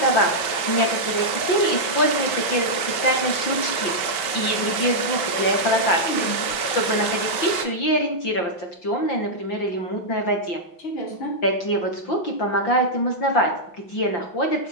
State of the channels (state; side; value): late; right; 5.8 ms